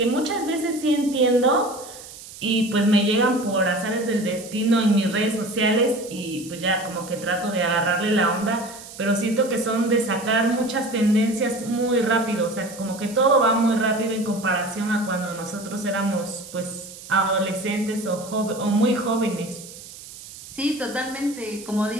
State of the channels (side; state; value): right; noise; hiss, 16 dB below the sound